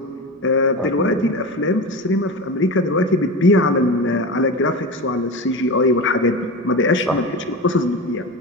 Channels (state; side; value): normal; both; correlation 0.24